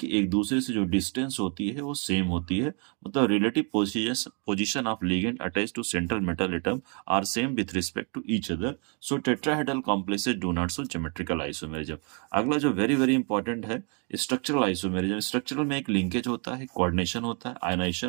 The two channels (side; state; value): left; quieter; 38.2 dB